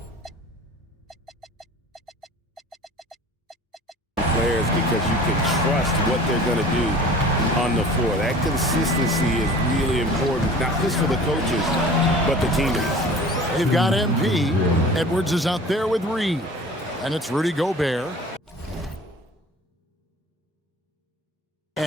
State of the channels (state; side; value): normal; both; correlation 0.43